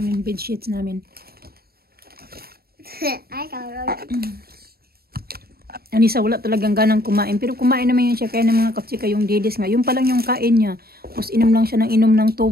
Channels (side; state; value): left; late; 0.45 ms